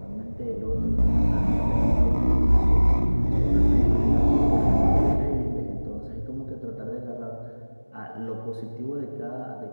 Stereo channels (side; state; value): both; inverted; correlation -1.00